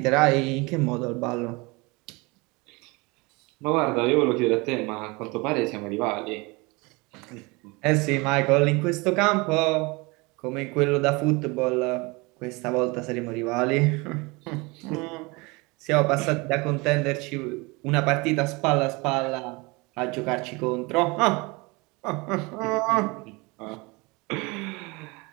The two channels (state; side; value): quieter; left; 26.0 dB